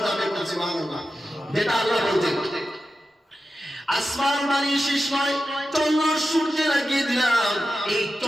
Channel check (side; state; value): both; normal; correlation 0.91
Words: যাবে। সুবহানাল্লাহ। যেটা আল্লাহ বলছেন, আসমান বানিয়ে শেষ নয়, চন্দ্র সূর্য লাগিয়ে দিলাম, এই